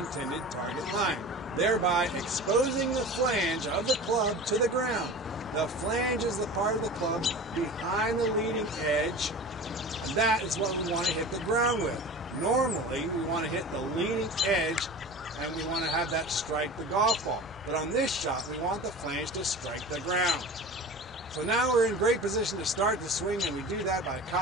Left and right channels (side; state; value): both; normal; correlation 0.35